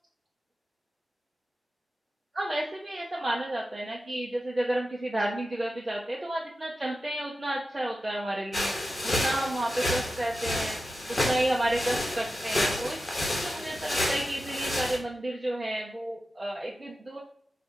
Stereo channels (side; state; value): both; normal; correlation 0.92